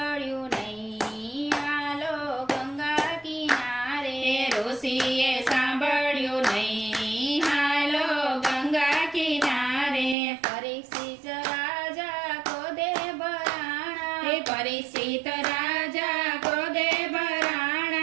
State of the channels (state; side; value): drops out; left; at 10.2 s